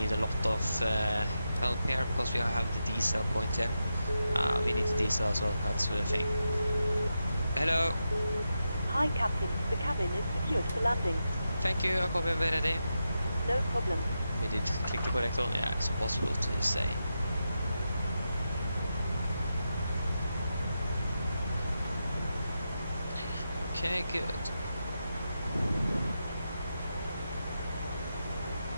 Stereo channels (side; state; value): both; inverted; correlation -0.88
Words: a lot of help here because we have the diesel point here. We need the diesel as well, that's the thing. Hello. Hi, Captain. The cabin is secured for landing. Thank you, I'm coming ready. No problem. We did click the correct one. Yeah, it's impossible to say. Okay, good.